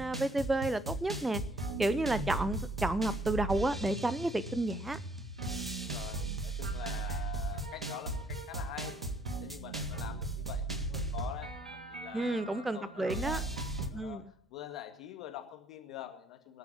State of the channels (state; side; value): normal; both; correlation 0.64